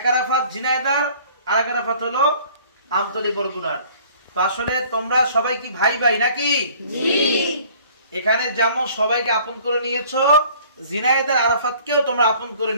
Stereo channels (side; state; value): both; inverted; correlation -0.53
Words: আরাফাত ঝিনাইদহ, আর এক আরাফাত হলো আমতলী বরগুনার। তো আসলে তোমরা সবাই কি ভাই ভাই নাকি? এখানে যেমন সবাইকে আপন করে নিয়েছো, ঝিনাইদহ আরাফাতকেও তোমরা আপন করে